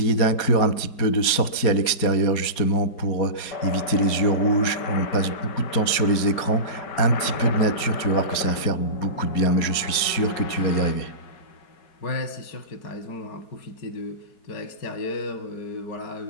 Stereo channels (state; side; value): late; right; 4.3 ms